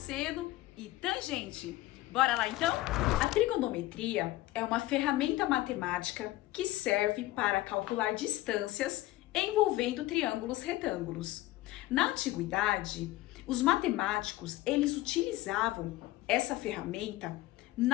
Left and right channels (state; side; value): quieter; right; 17.2 dB